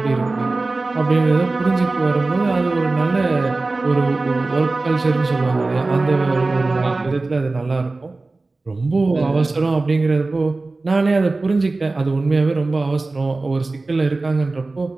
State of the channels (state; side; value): quieter; left; 3.4 dB